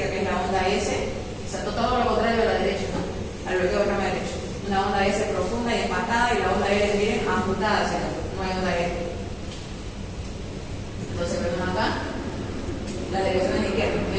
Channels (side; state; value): both; identical; correlation 1.00